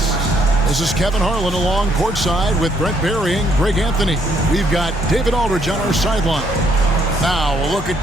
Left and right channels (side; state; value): both; normal; correlation 0.69